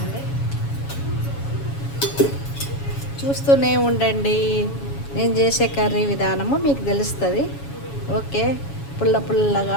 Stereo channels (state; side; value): late; right; 7.2 ms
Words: చూస్తూనే ఉండండి, నేను చేసే కర్రీ విధానము మీకు తెలుస్తుంది. ఓకే, పుల్ల